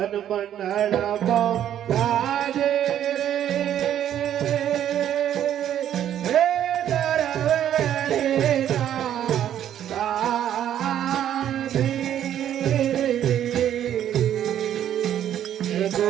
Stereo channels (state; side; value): quieter; left; 10.7 dB